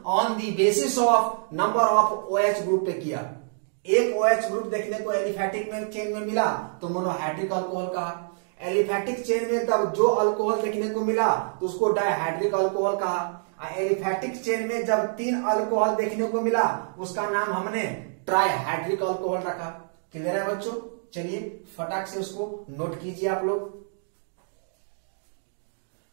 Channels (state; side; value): silent; left; digital silence